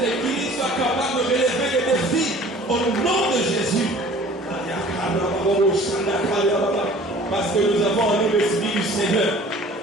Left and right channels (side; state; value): both; normal; correlation 0.48